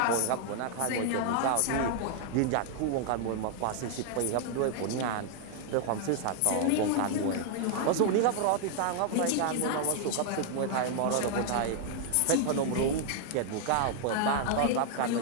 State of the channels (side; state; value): both; different; correlation 0.00